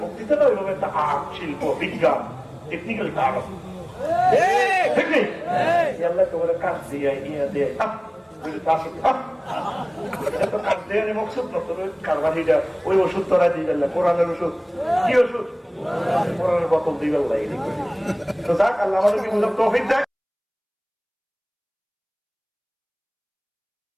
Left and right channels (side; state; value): both; identical; correlation 1.00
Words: বক্তৃতাটা ওইভাবে একটা আর্ট শিল্প বিজ্ঞান টেকনিক্যাল কাজ ঠিক নেই আল্লাহ তোমার কাজ দিয়ে ইয়ে দিয়ে ওই ওষুধ তোরা দিয়ে কোরআনের ওষুধ কি ওষুধ কোরআনের বোতল দিয়ে তো যাক আল্লাহ আমাদেরকে তৌফিক দেয়।